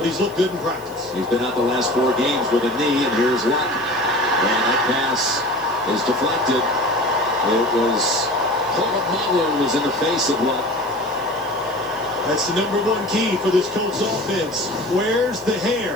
he's looked good in practice. He's been out the last 4 games with a knee, and here's Luck. And that pass is deflected. It was Polamalu was in the face of Luck. That's the #1 key for this Colts offense. Where's the hair?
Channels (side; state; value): left; noise; hiss, 23 dB below the sound